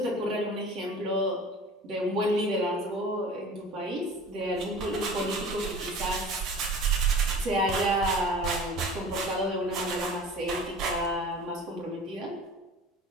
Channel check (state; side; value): normal; both; correlation 0.41